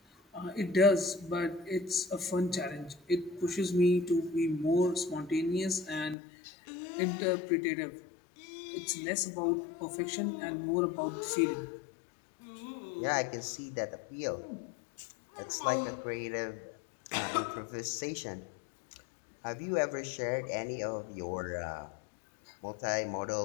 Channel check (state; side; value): drops out; right; at 6.2 s